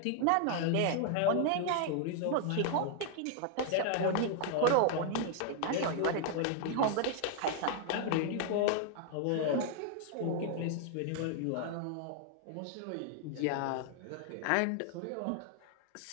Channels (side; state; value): both; different; correlation 0.00